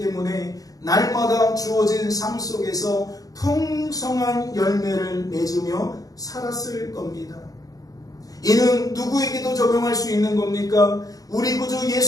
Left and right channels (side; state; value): right; late; 0.17 ms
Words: 날마다 주어진 삶 속에서 풍성한 열매를 맺으며 살았을 겁니다. 이는 누구에게도 적용할 수 있는 겁니까? 우리 구주